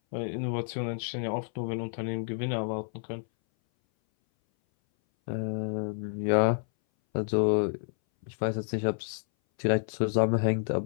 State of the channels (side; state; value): right; silent; 58 dB below the other